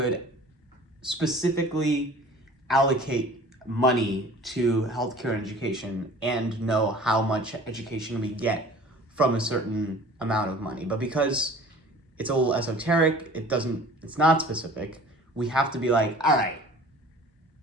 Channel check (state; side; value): normal; both; correlation 0.46